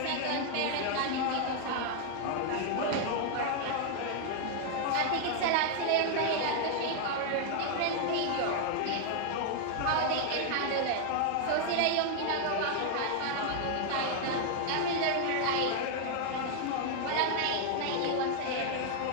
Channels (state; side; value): different; both; correlation 0.00